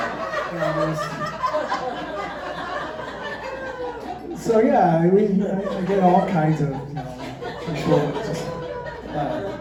So yeah, I mean, I get all kinds of, people.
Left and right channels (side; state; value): both; identical; correlation 1.00